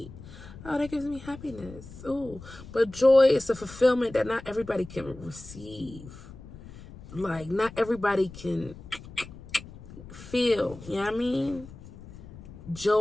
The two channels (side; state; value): left; noise; rumble, 16 dB below the sound